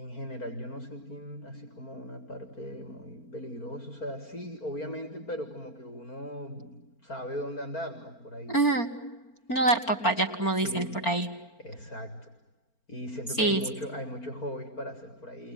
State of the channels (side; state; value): right; late; 4.4 ms